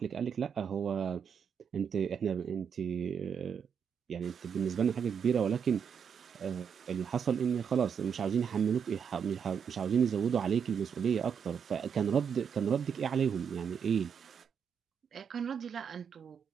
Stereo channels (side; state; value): left; quieter; 7.1 dB